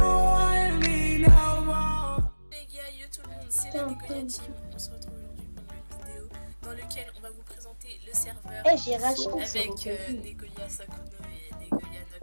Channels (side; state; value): both; inverted; correlation -1.00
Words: me no more. Les gars, yo tout le monde, c'est la Negolia Team. On se retrouve aujourd'hui pour une vidéo dans laquelle on va vous présenter le serveur J'ai racheté avec Negolia Sakuno et Negolia